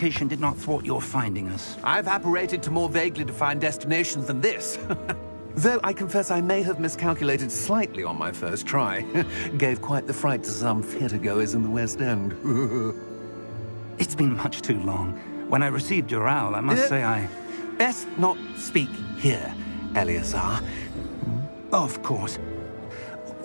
did not thwart your finding us. I've apparated to more vaguely defined destinations than this. Though I confess I may have miscalculated slightly on my first try. Gave quite the fright to some theatre-goers in the West End. It's been much too long. When I received your owl, I must say I... Best not speak here, Eleazar. Of course.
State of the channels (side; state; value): both; inverted; correlation -1.00